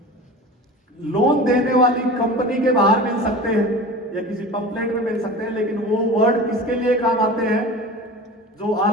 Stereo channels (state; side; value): normal; both; correlation 0.35